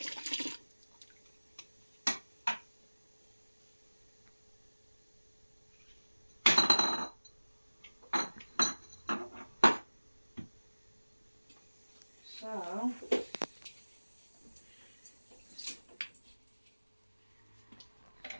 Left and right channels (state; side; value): inverted; both; correlation -1.00